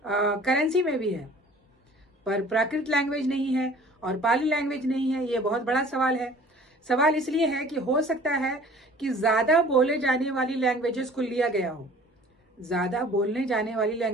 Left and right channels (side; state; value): both; normal; correlation 0.48